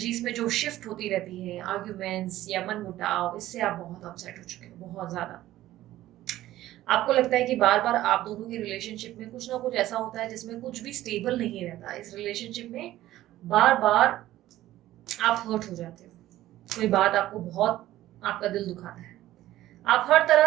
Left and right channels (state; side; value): quieter; left; 14.7 dB